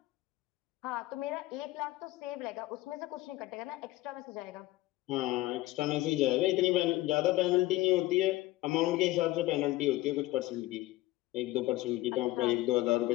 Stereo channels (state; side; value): quieter; right; 18.0 dB